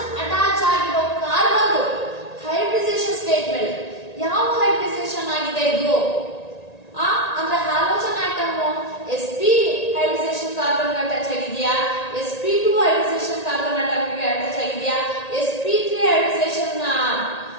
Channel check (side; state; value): right; late; 1.8 ms